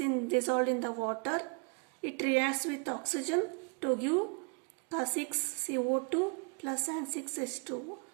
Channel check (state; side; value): quieter; left; 36.4 dB